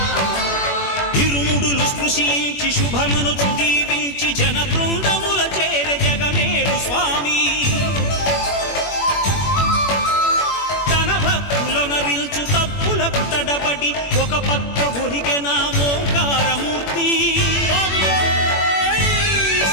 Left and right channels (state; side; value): late; right; 21 ms